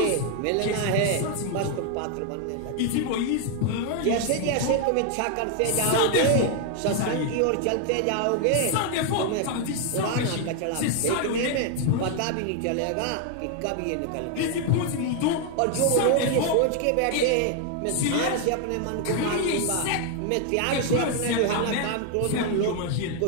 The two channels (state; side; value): different; both; correlation 0.00